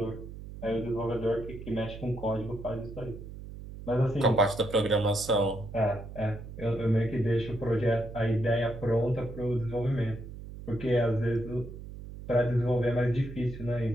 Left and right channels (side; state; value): right; noise; hum, 12 dB below the sound